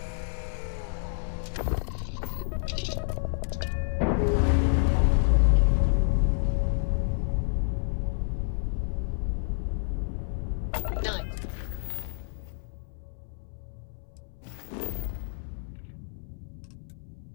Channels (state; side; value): silent; right; 59 dB below the other